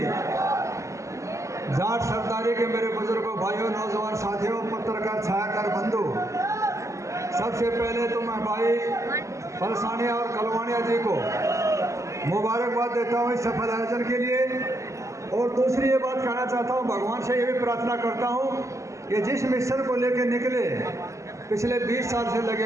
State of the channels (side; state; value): left; late; 0.15 ms